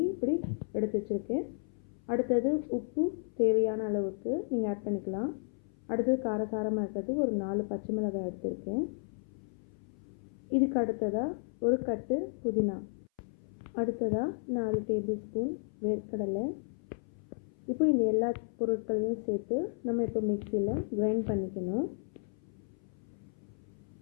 இப்படி எடுத்து வச்சுருக்கேன். அடுத்தது உப்பு தேவையான அளவுக்கு நீங்கள் ஆட் பண்ணிக்கலாம். அடுத்தது காரசாரமாக இருக்கிறது ஒரு 4 பச்சை மிளகாய் எடுத்திருக்கேன். இதுக்கு அடுத்ததாக ஒரு கட்டு புதினா, அடுத்ததாக 4 டேபிள் ஸ்பூன் வேர்க்கடலை. இப்போ இந்த எல்லா பொருட்களையும் சேர்த்து நம்ம இப்போ மிக்சியில் கிரைண்ட் பண்ணிக்கணும்.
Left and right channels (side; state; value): right; silent; 56 dB below the other